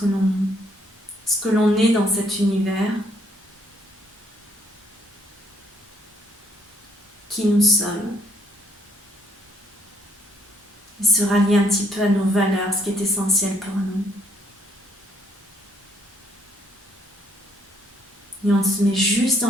l'on est dans cet univers, qui nous sommes. Et se rallier un petit peu à nos valeurs, ce qui est essentiel pour nous. Et on se met juste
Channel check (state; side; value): normal; both; correlation 0.68